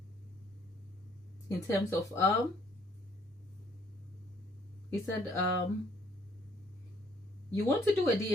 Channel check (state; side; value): normal; both; correlation 0.63